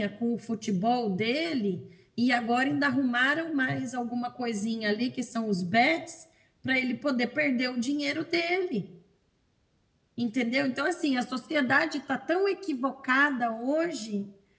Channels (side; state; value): both; identical; correlation 1.00